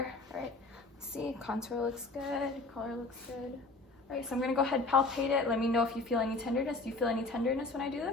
All right, see, contour looks good, color looks good. All right, so I'm gonna go ahead and palpate it. Let me know if you feel any tenderness. Do you feel any tenderness when I do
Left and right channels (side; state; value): right; quieter; 3.4 dB